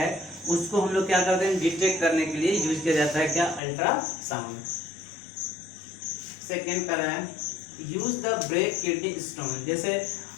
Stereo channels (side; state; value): right; drops out; at 3.6 s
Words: उसको हम लोग क्या करते हैं, डिटेक्ट करने के लिए यूज किया जाता है क्या, अल्ट्रासाउंड। सेकेंड कर रहा है use the break kidney stone. जैसे